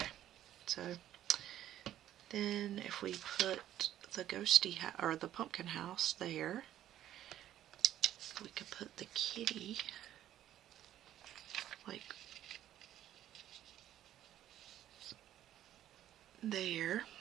so then if we put the ghosty or the pumpkin house there, we could put the kitty like there.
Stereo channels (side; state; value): left; quieter; 12.1 dB